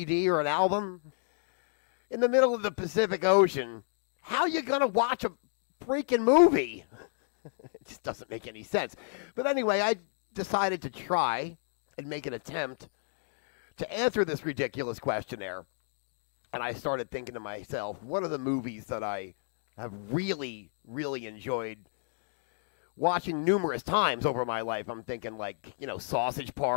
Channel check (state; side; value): silent; right; digital silence